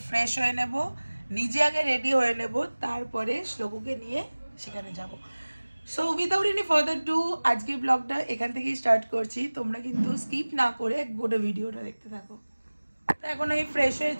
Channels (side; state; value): both; inverted; correlation -1.00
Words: ফ্রেশ হয়ে নেব, নিজে আগে রেডি হয়ে নেব, তারপরে শ্লোকুকে নিয়ে সেখানে যাব। So without any further do আজকের ব্লগটা এখান থেকেই স্টার্ট করছি। তোমরা কিন্তু স্কিপ না করে গোটা ভিডিওটা দেখতে থাকো। তো এখন আমি ফ্রেশ হয়ে